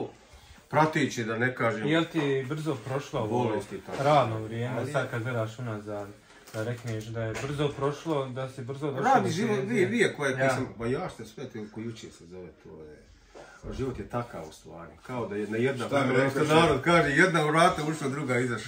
prateće, da ne kažem. Jel ti brzo prošlo ovo radno vrijeme, sad kad gledaš unazad? Da rekneš da je brzo prošlo, da si brzo došao. Radi život, vi koje sam, ba ja što sve ko jučer se zove, to je... Život je takav u stvari, kao da jedna, što narod kaže, jedna vrata ušla, druga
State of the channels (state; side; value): identical; both; correlation 1.00